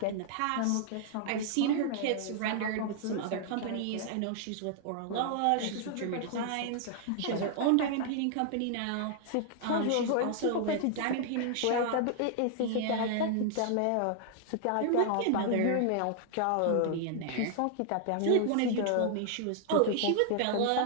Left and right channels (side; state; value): both; different; correlation 0.00